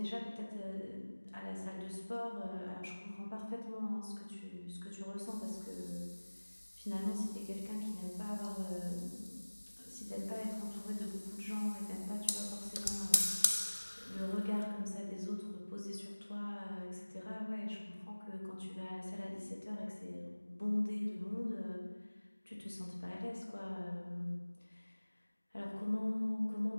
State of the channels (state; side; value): inverted; both; correlation -1.00